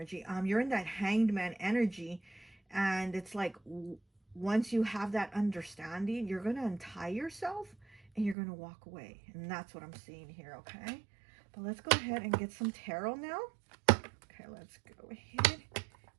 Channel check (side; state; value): left; drops out; at 8.3 s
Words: You're in that Hanged Man energy, and it's like once you have that understanding, you're going to untie yourself and you're going to walk away. And that's what I'm seeing here, okay? But let's go ahead and get some tarot now. Okay, let's go ahead